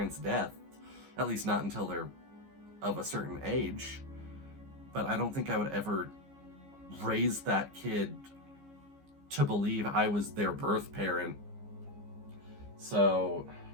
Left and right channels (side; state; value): left; late; 15 ms